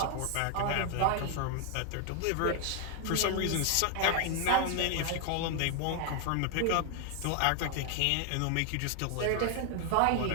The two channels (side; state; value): both; different; correlation 0.00